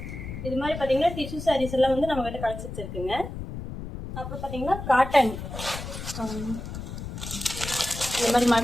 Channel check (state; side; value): noise; left; rumble, 8 dB below the sound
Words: இது மாதிரி பார்த்தீங்கன்னா டிஷ்யூ சாரீஸ் எல்லாம் வந்து நம்ம கிட்ட கலெக்ஷன்ஸ் இருக்குங்க. அப்புறம் பார்த்தீங்கன்னா காட்டன், இந்த மாதிரி